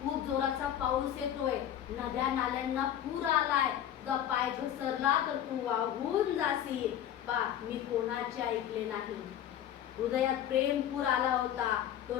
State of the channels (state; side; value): quieter; right; 10.7 dB